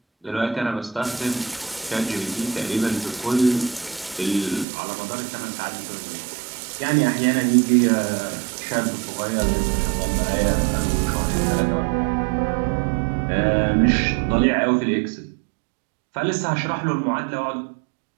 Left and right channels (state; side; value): drops out; left; at 4.7 s